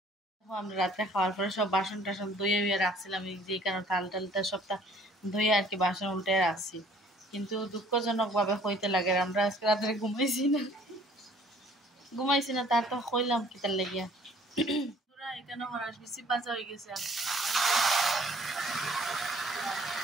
আমরা রাত্রে খাওয়ার পরে সব বাসন টাসন ধুয়ে উয়ে রাখছিলাম যে কারণে থাল টালটা সবটা ধুয়ে আর কি বাসন উল্টে রাখছি কিন্তু দুঃখজনকভাবে হইতে লাগে আমরা আজকে রাত্রে ঘুমাইছি না তার তো কইলাম কি তার লাগিয়া তোরা এখানে হরাস বেশি বাজা হয়ে গেছে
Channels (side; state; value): both; normal; correlation 0.57